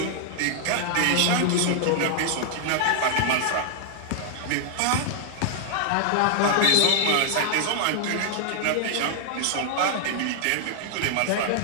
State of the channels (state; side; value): different; both; correlation 0.00